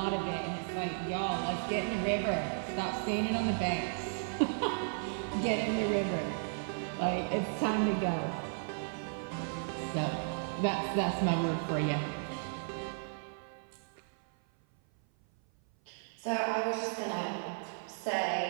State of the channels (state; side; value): silent; left; 55 dB below the other